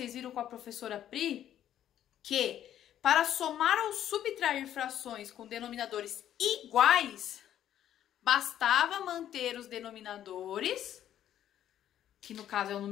viram com a professora Pri que para somar ou subtrair frações com denominadores iguais, bastava manter os denominadores, que no caso é o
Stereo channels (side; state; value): right; quieter; 11.1 dB